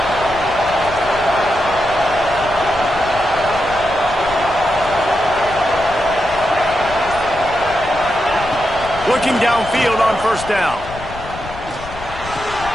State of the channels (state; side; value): noise; left; rumble, 14 dB below the sound